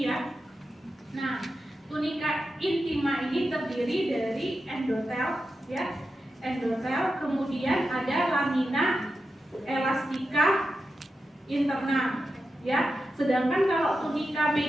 ya. Nah, tunika intima ini terdiri dari endotel ya, endotel, kemudian ada lamina elastika interna ya. Sedangkan kalau tunika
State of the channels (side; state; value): both; normal; correlation 0.90